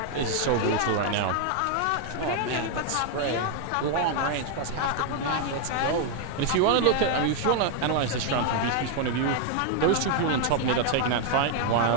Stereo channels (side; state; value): both; different; correlation 0.00